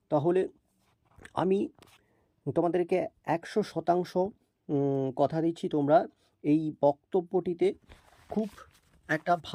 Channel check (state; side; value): identical; both; correlation 1.00